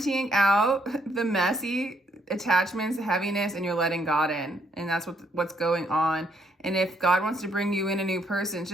out the messy attachments, the heaviness, and you're letting God in. And that's what's going on. And if God wants to bring you in a new person,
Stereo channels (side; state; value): both; normal; correlation 0.71